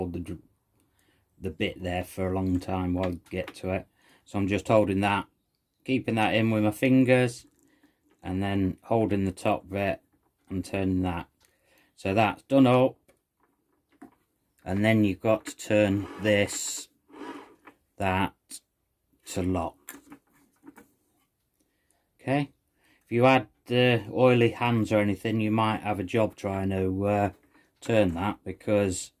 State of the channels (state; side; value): identical; both; correlation 1.00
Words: the bit there for a long time while you get to it. So I'm just holding that, keeping that in with my fingers, and then holding the top bit and turning that. So that's done up, and then you've got to turn that to lock. Okay, if you had oily hands or anything, you might have a job trying to turn that, because